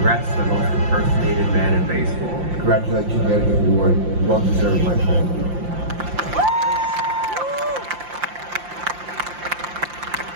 to the most impersonated man in baseball. Congratulations on getting the award. Well deserved, my friend.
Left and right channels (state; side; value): late; left; 5.7 ms